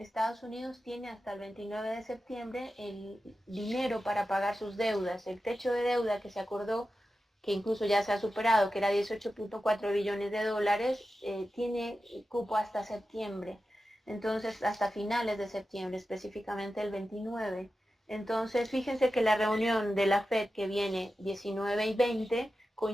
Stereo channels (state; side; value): normal; both; correlation 0.92